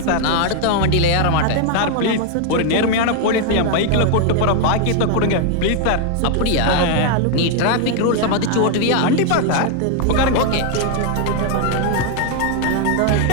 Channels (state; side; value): different; both; correlation 0.00